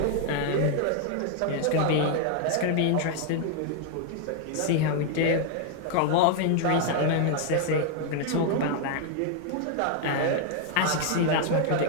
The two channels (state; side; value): different; both; correlation 0.00